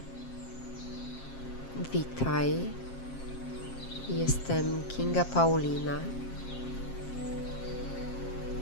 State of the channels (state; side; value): late; right; 7.5 ms